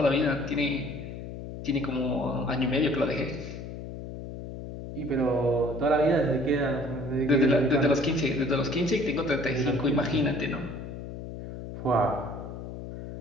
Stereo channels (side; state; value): left; noise; hum, 9 dB below the sound